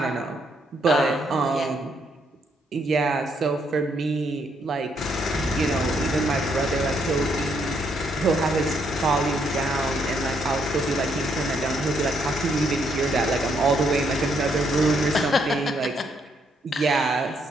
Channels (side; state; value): both; normal; correlation 0.73